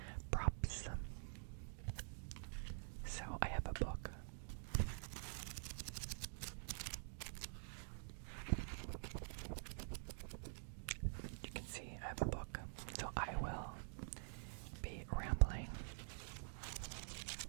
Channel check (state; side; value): silent; left; digital silence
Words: props. So I have a book. You can see I have a book. So I will be rambling